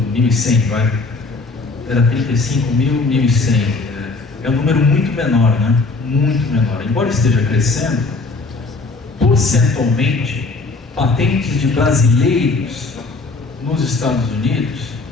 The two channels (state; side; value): quieter; right; 3.7 dB